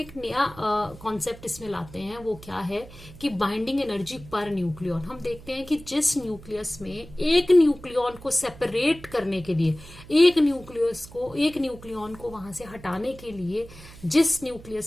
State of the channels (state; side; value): noise; right; hum, 18 dB below the sound